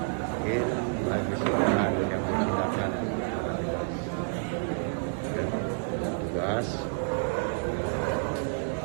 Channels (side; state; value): left; silent; 58 dB below the other